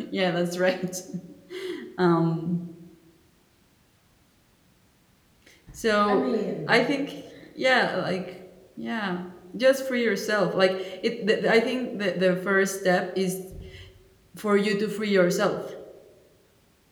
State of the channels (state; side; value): identical; both; correlation 1.00